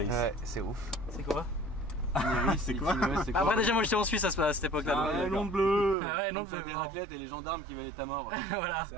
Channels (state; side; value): drops out; left; at 6.0 s